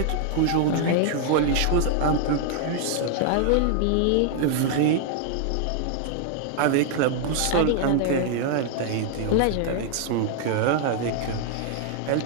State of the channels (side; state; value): both; different; correlation 0.00